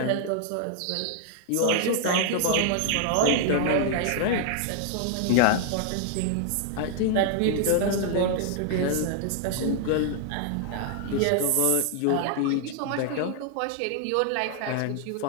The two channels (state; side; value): different; both; correlation 0.00